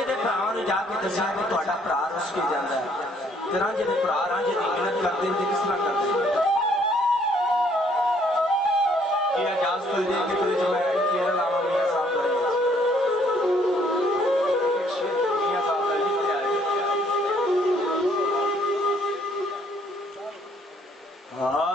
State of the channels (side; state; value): both; normal; correlation 0.65